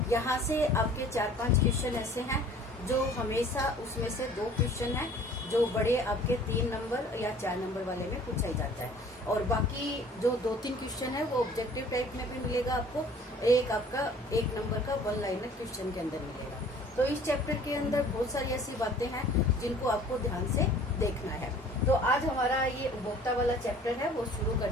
यहाँ से आपके 4-5 क्वेश्चन ऐसे हैं जो हमेशा उसमें से 2 क्वेश्चन हैं जो बड़े आपके 3 नंबर या 4 नंबर वाले में पूछा ही जाता है, और बाकी जो 2-3 क्वेश्चन है वो ऑब्जेक्टिव टाइप में भी मिलेगा आपको। एक आपका 1 नंबर का 1 लाइनर क्वेश्चन के अंदर मिलेगा। तो इस चैप्टर के अंदर बहुत सारी ऐसी बातें हैं जिनको आपको ध्यान से देखना है। तो आज हमारा ये उपभोक्ता वाला चैप्टर है वो शुरू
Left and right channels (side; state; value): both; normal; correlation 0.50